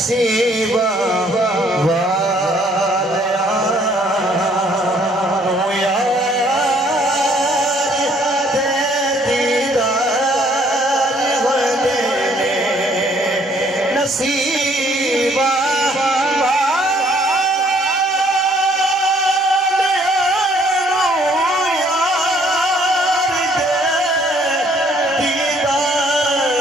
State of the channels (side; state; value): both; normal; correlation 0.63